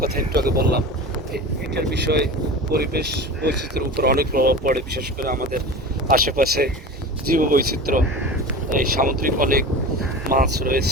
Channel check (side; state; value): both; normal; correlation 0.32